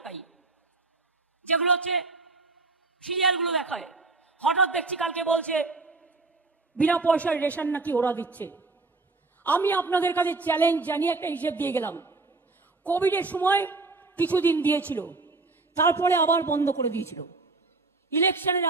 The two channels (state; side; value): quieter; left; 3.6 dB